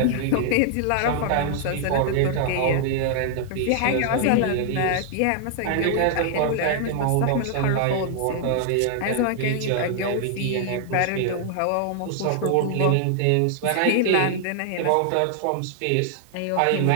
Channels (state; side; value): different; both; correlation -0.01